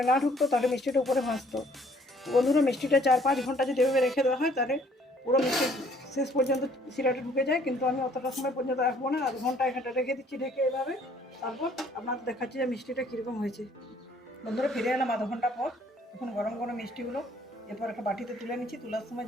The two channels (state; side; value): normal; both; correlation 0.60